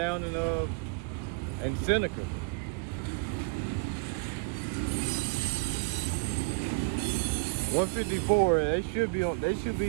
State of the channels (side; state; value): left; quieter; 29.2 dB